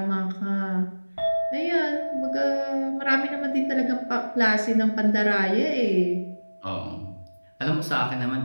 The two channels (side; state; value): both; inverted; correlation -1.00